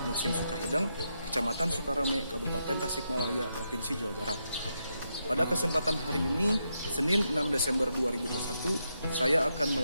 Muhsin Sukahideng, Kecamatan Sukarame, Kabupaten Tasikmalaya, Provinsi Jawa Barat. Pada kesempatan hari ini, Senin 6 Desember 2021, saya akan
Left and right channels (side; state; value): both; inverted; correlation -0.83